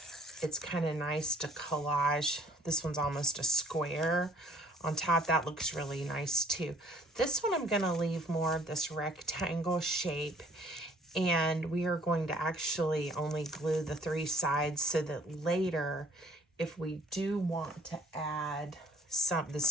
it's kind of nice to collage. This one's almost a square on top. That looks really nice too. This one I'm going to leave more of this rectangle shape, and we are going to actually only glue the 3 sides so that later, if we do want to add some, this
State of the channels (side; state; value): both; normal; correlation 0.58